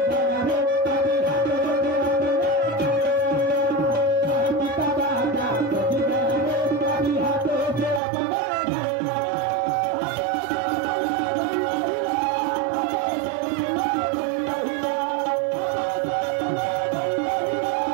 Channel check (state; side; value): drops out; left; at 8.0 s